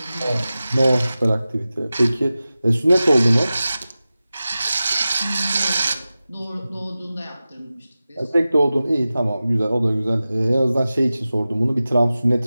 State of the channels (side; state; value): both; inverted; correlation -0.95